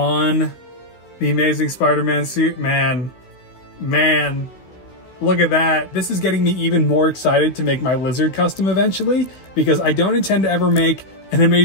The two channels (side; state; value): right; late; 16 ms